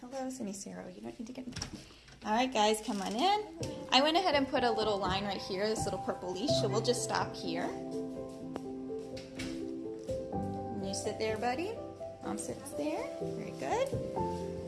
Hello, Sinicero. You don't need to get in. All right, guys, come on in. I went ahead and put a little line right here, this little purple leash, so we'll just stop here. And you sit there, buddy. Mom sits there. Very good.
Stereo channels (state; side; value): identical; both; correlation 1.00